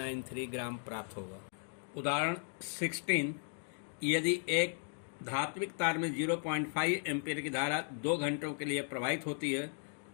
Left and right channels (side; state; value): right; silent; 54 dB below the other